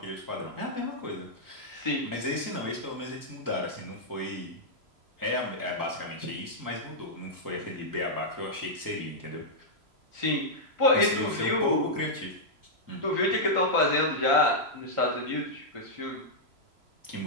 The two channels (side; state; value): left; late; 3.0 ms